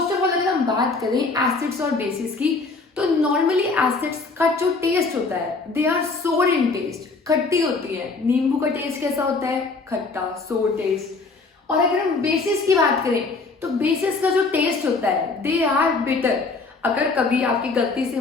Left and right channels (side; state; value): right; quieter; 3.9 dB